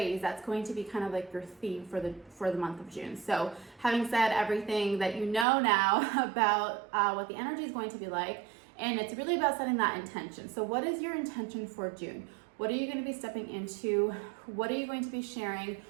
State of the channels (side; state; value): left; drops out; at 5.5 s